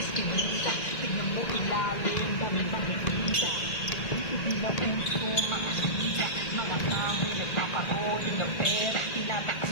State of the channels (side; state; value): right; late; 1.8 ms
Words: iskinita. Tignan mo ilalim, dami bang nagkita. Hindi na puso, makasita. Mga tao, nagpapahogin ng pera. Tinatakas